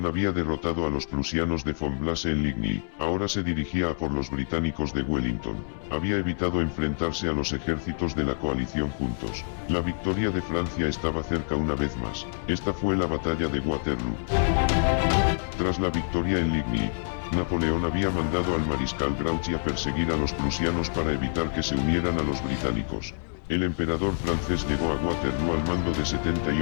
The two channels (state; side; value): silent; right; digital silence